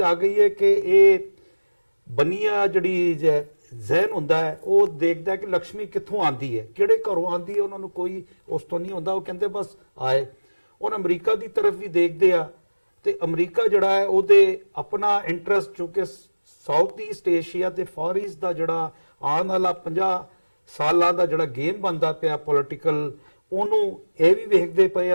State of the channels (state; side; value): inverted; both; correlation -1.00